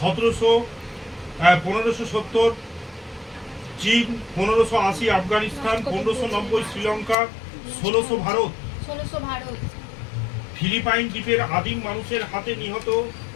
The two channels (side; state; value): right; drops out; at 7.2 s